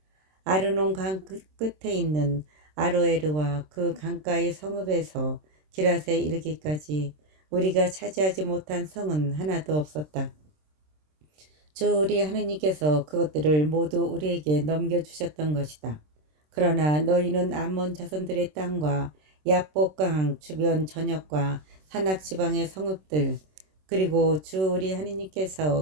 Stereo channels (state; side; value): late; left; 26 ms